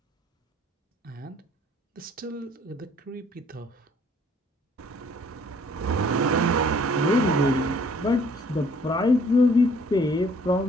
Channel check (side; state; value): both; normal; correlation 0.59